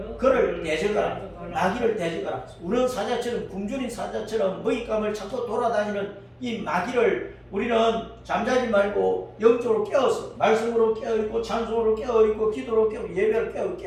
그를 대적하라. 마귀를 대적하라. 우는 사자처럼 굶주린 사자처럼 먹잇감을 찾고 돌아다니는 이 마귀를 우리는 잠자지 말고 영적으로 깨어서 말씀으로 깨어있고 찬송으로 깨어있고 기도로 깨어있고 예배로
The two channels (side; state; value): both; identical; correlation 1.00